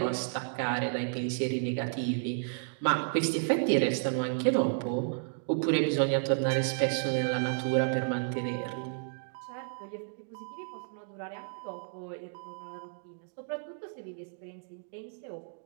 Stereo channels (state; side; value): silent; left; digital silence